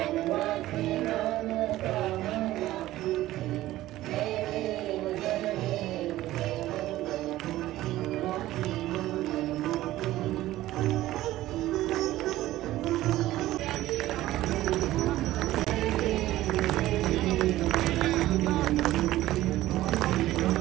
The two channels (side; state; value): left; quieter; 15.6 dB